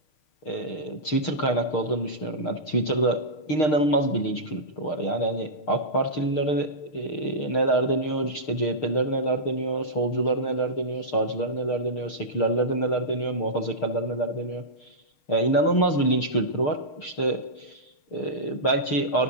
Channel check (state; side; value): late; right; 6.6 ms